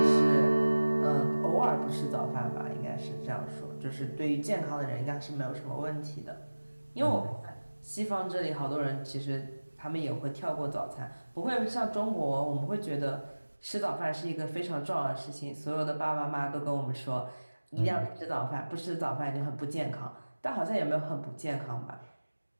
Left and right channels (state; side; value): inverted; both; correlation -1.00